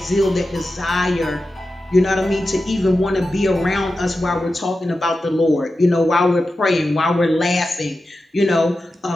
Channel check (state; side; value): normal; both; correlation 0.92